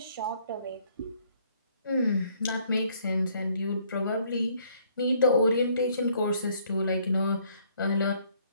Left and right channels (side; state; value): both; inverted; correlation -0.64